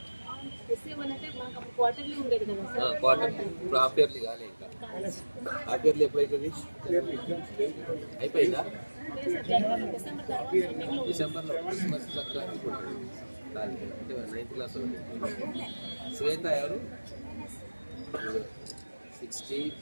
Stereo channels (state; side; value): inverted; both; correlation -1.00